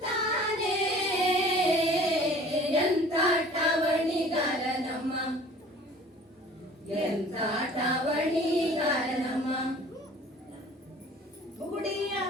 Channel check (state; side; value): normal; both; correlation 0.48